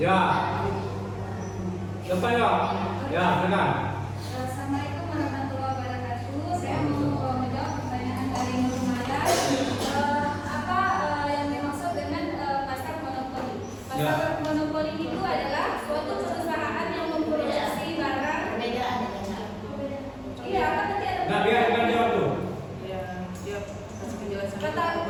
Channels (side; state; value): both; identical; correlation 1.00